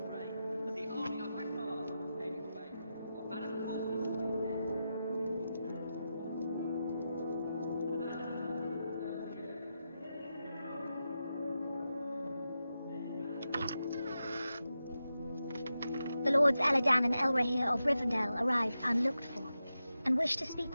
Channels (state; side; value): inverted; both; correlation -0.89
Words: fray as the army of Akbar came his way. A banner The Lords Elladan and Elrahir of Rivendell arrived unlooked for, and wished to speak